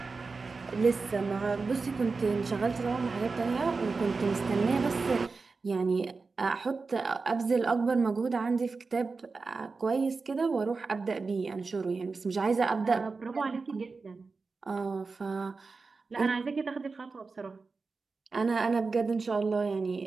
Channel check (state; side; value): quieter; left; 4.3 dB